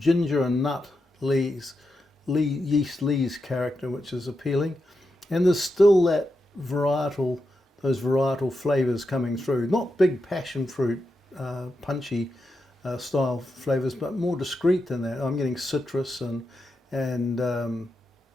and nut yeast lees character, which is appealing, and there's still that those varietal flavors coming through. Not big passion fruit, punchy style flavors, but more discreet than that. I'm getting citrus and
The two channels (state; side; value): normal; both; correlation 0.87